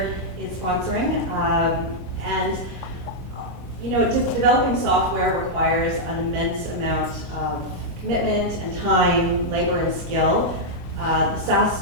is sponsoring. And you know, just developing software requires an immense amount of commitment and time, labor and skill. The SaaS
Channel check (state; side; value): normal; both; correlation -0.05